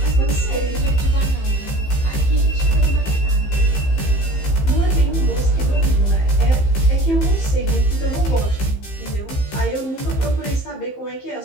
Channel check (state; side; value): late; right; 15 ms